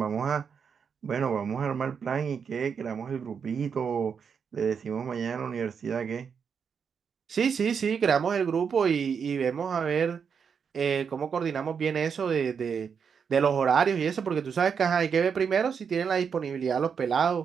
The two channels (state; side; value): quieter; left; 6.6 dB